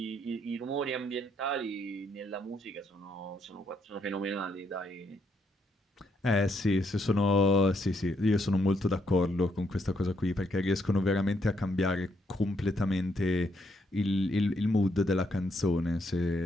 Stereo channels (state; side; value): normal; both; correlation 0.76